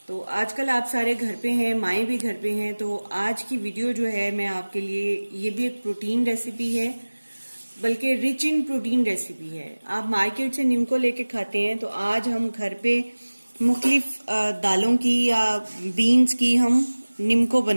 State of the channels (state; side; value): inverted; both; correlation -1.00